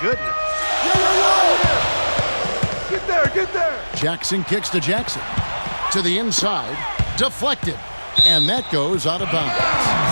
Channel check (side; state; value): both; inverted; correlation -1.00